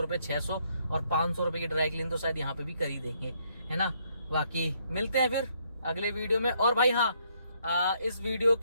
600 और 500 रुपये की ड्राई क्लीन तो शायद यहाँ पे भी कर ही देंगे, है ना। बाकी मिलते हैं फिर अगले वीडियो में। और भाई हाँ, इस वीडियो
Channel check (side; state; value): both; inverted; correlation -0.71